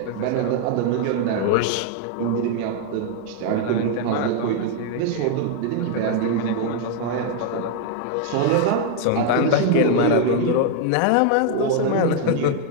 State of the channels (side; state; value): both; different; correlation 0.00